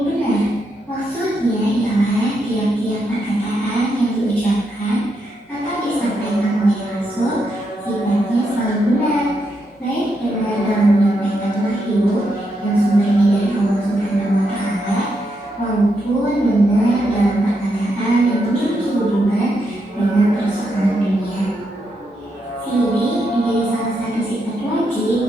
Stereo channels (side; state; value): both; normal; correlation 0.81